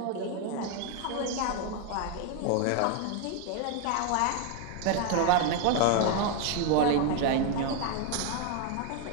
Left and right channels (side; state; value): both; different; correlation 0.01